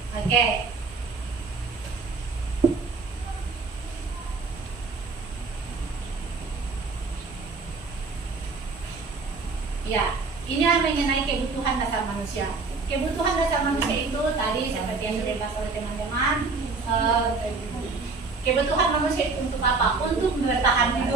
Oke. Ya, ini mengenai kebutuhan dasar manusia. Kebutuhan dasar manusia itu tadi seperti yang sudah dibahas oleh teman-teman. Kebutuhan manusia itu untuk apa? Untuk bertahan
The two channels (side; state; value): left; quieter; 4.1 dB